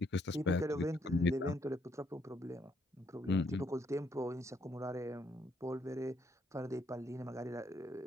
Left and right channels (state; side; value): normal; both; correlation 0.72